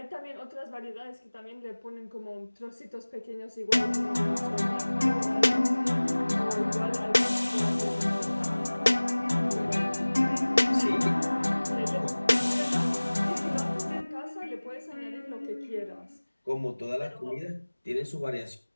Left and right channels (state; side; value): inverted; both; correlation -1.00